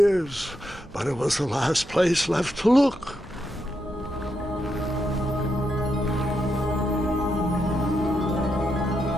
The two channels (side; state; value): both; normal; correlation 0.83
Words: but it was the last place left to look.